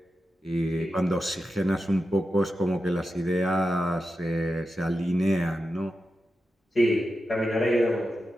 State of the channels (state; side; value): normal; both; correlation 0.90